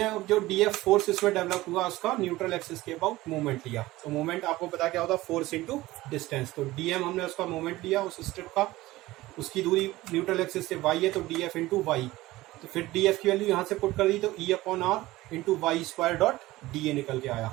जो डी एफ फोर्स इसमें डेवलप हुआ उसका न्यूट्रल एक्सिस के अबाउट मूवमेंट लिया। तो मूवमेंट आपको पता क्या होता है, फोर्स इंटू डिस्टेंस। तो डी एम हमने उसका मूवमेंट लिया उस स्ट्रिप का, उसकी दूरी न्यूट्रल एक्सिस से वाई है तो डी एफ इंटू वाई। तो फिर डी एफ की वैल्यू यहाँ से पुट कर दी तो E upon R into Y square dot D A निकल के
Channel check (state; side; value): quieter; left; 18.0 dB